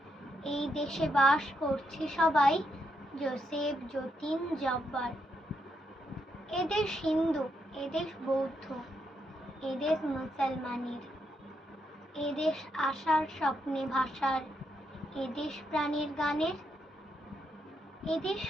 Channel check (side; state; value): both; normal; correlation 0.79